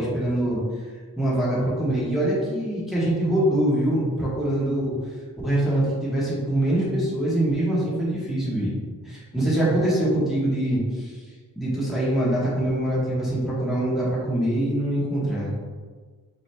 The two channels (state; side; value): normal; both; correlation 0.66